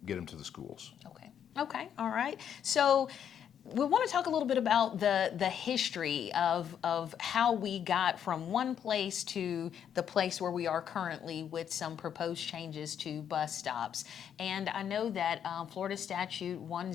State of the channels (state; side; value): quieter; right; 8.8 dB